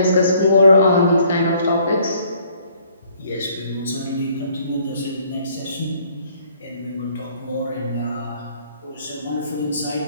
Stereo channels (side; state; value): both; inverted; correlation -0.62